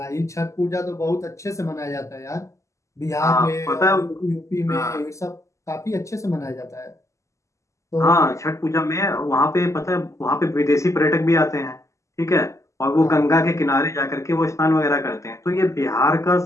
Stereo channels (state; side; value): late; right; 0.15 ms